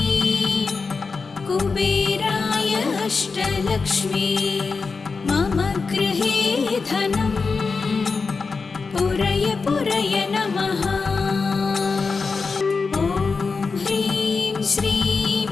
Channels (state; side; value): quieter; right; 4.6 dB